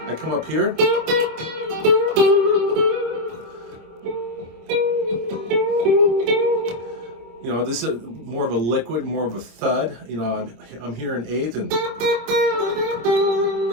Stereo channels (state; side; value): late; left; 26 ms